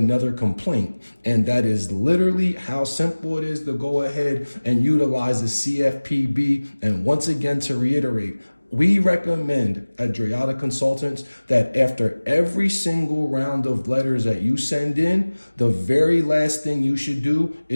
complaint. And that is literally how simple it is to go ahead and utilize the CFPB. And once again, to reiterate, we recommend at Drayata Consultants that after every single round of letters that you send in, the very last thing you should do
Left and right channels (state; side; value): inverted; both; correlation -1.00